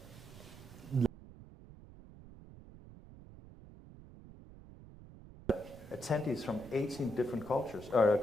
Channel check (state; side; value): noise; right; rumble, 18 dB below the sound